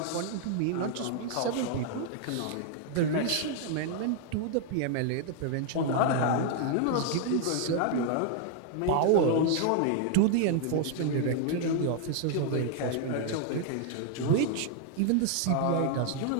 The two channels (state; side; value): different; both; correlation 0.00